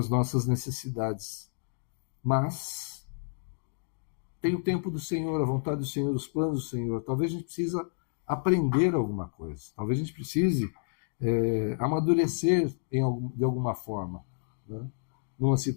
nossas necessidades. Mas tem o tempo do Senhor, a vontade do Senhor, os planos do Senhor. Talvez a gente precise aprender alguma coisa. Talvez a gente precise amadurecer de alguma forma, né? Numa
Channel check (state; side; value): silent; right; digital silence